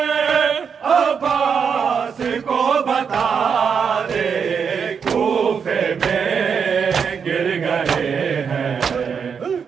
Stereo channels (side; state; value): left; quieter; 6.5 dB